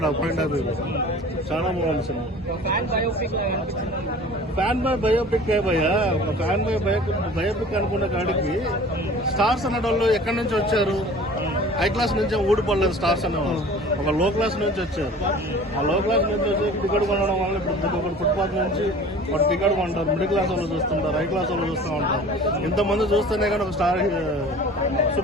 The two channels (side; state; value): both; normal; correlation 0.43